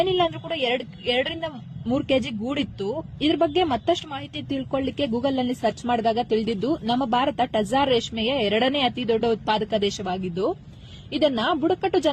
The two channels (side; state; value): both; identical; correlation 1.00